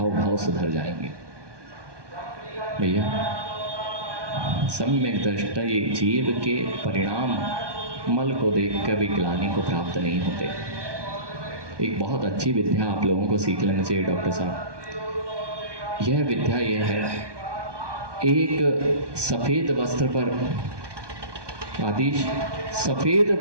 सुधर जाएंगे। भैया सम्यक दृष्टि जीव के परिणाम मल को देख कर भी ग्लानि को प्राप्त नहीं होते। एक बहुत अच्छी विद्या आप लोगों को सीख लेना चाहिए डॉक्टर साहब। यह विद्या यह है, एक सफेद वस्त्र पर, आदिश सफेद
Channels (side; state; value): left; late; 1.2 ms